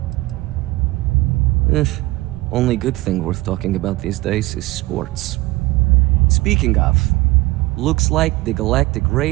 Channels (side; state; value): left; quieter; 20.0 dB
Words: Only good thing worth talking about these days is sports. Speaking of, looks like the Galactic